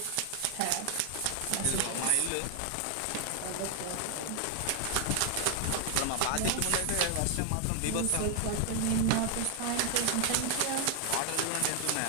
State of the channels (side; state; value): both; different; correlation 0.00